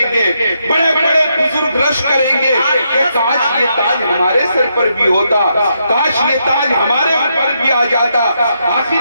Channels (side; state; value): both; inverted; correlation -0.80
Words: گے، بڑے بڑے بزرگ رش کریں گے کہ کاش یہ تاج ہمارے سر پر بھی ہوتا، کاش یہ تاج ہمارے اوپر بھی آ جاتا۔ آخر